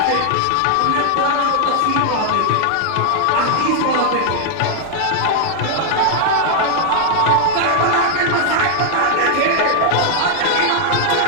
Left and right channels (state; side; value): different; both; correlation 0.00